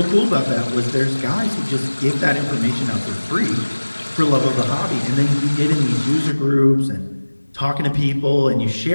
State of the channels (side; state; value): both; inverted; correlation -1.00